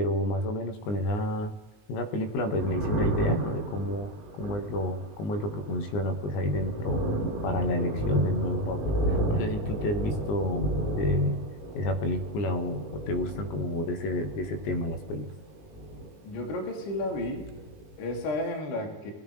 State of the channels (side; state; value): right; late; 19 ms